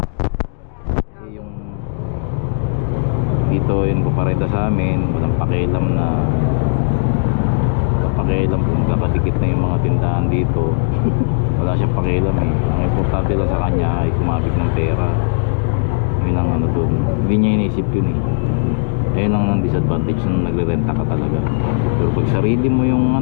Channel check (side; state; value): right; silent; digital silence